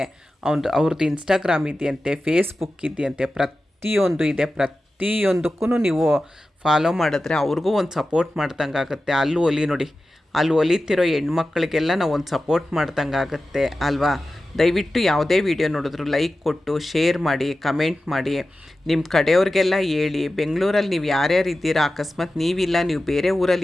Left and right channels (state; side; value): normal; both; correlation 0.94